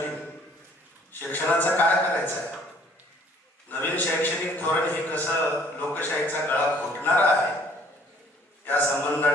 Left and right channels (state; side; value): normal; both; correlation 0.58